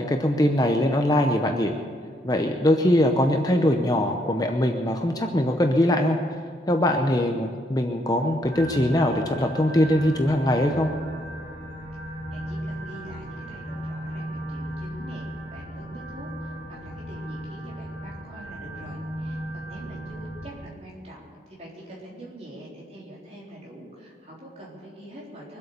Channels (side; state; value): both; normal; correlation 0.73